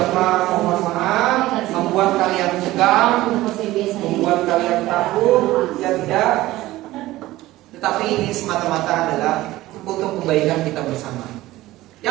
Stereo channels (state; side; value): quieter; left; 17.0 dB